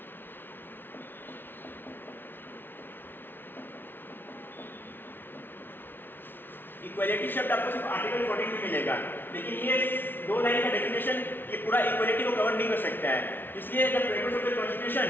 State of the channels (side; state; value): right; late; 0.10 ms